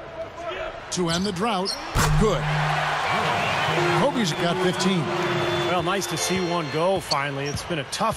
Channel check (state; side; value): identical; both; correlation 1.00